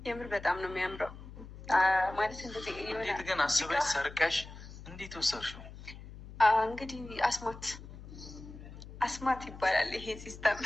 የምር በጣም ነው የሚያምረው። ማለት እንደዚህ እንዴት ግን አስበሽ ሰርቀሽ እንዴት ወሰድሽው? እንግዲህ አስማት ይባላል ይሄ ሲስተም።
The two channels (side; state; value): left; noise; hum, 15 dB below the sound